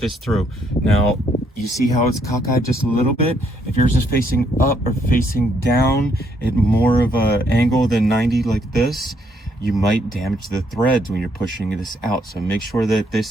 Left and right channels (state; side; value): normal; both; correlation 0.72